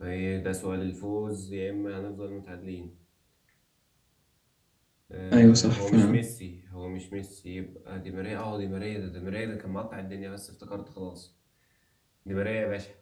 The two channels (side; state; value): both; identical; correlation 1.00